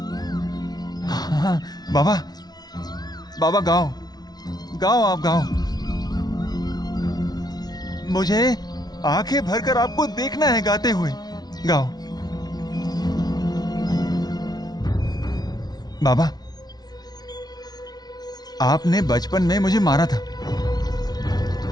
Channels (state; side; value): late; right; 0.19 ms